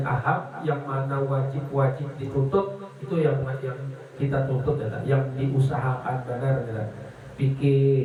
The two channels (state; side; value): identical; both; correlation 1.00